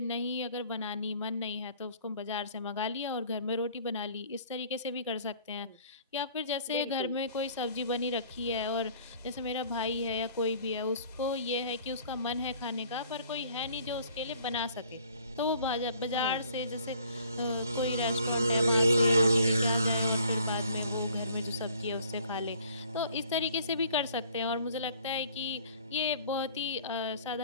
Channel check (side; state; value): both; inverted; correlation -0.55